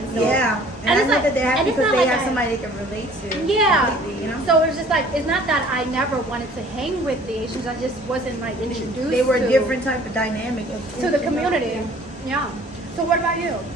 So, Yeah. And I it's know that they're happy and it's because not they like have I- somebody they can relate to. Yeah. completely, you know? So it's just like it's not that I never wanted to hang with the Asians. I just wasn't like introduced. They were a to, different type of dynamic of to the community. Yeah. So what about you?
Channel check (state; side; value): normal; both; correlation 0.52